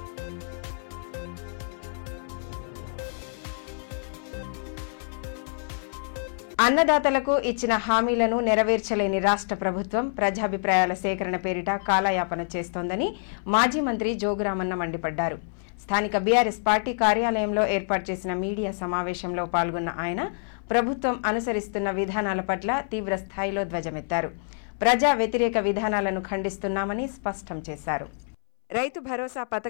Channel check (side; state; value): right; silent; 60 dB below the other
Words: అన్నదాతలకు ఇచ్చిన హామీలను నెరవేర్చలేని రాష్ట్ర ప్రభుత్వం ప్రజాభిప్రాయాల సేకరణ పేరిట కాలయాపన చేస్తోందని మాజీ మంత్రి జోగురామన్న మండిపడ్డారు. స్థానిక బీఆర్ఎస్ పార్టీ కార్యాలయంలో ఏర్పాటు చేసిన మీడియా సమావేశంలో పాల్గొన్న ఆయన ప్రభుత్వం అనుసరిస్తున్న విధానాల పట్ల తీవ్ర స్థాయిలో ధ్వజమెత్తారు. ప్రజా వ్యతిరేక విధానాలను ఖండిస్తున్నామని స్పష్టం చేశారు. రైతు భరోసా